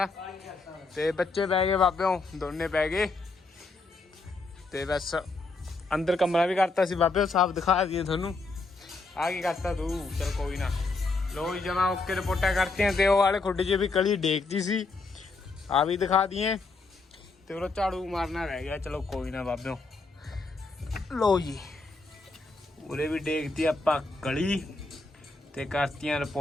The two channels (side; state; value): right; quieter; 3.7 dB